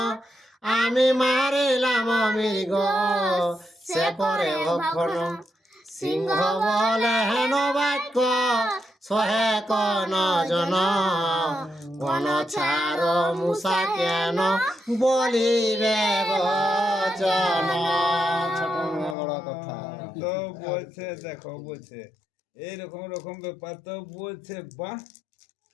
আমি মারিলাম মৃগ সে করে ভক্ষণ সিংহ বলে হেন বাক্য সহে কন জন কোন ছাড় মুসা কেন বলিবে বচন। ছোট মেয়ে বড় কথা। তো বলছে দেখো বলছে এইরকম রকম ব্যাপার তো বলছে বাহ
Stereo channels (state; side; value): drops out; right; at 19.2 s